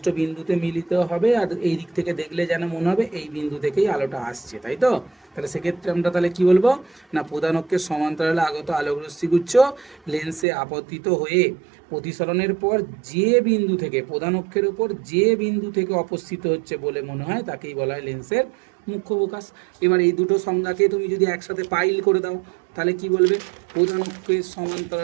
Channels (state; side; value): drops out; left; at 10.5 s